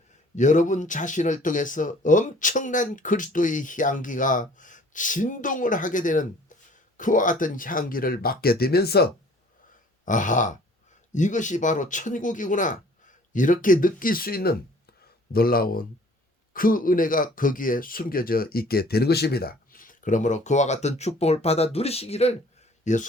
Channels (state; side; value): normal; both; correlation 0.53